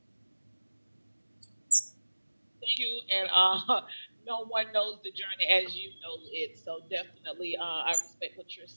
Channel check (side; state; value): both; inverted; correlation -1.00